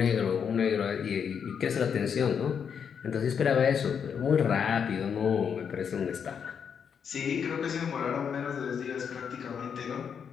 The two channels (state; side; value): quieter; right; 7.2 dB